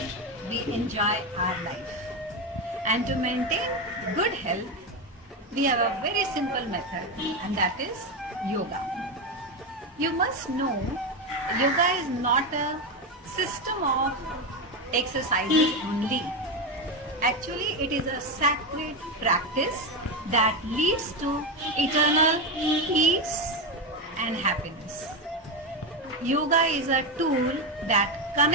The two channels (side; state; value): both; normal; correlation 0.13